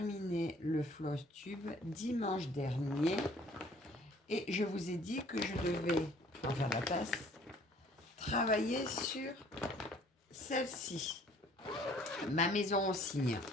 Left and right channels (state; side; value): normal; both; correlation 0.56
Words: le floss tube dimanche dernier et je vous ai dit que je devais, en faire la tasse, travailler sur celle-ci, ma maison au cygne.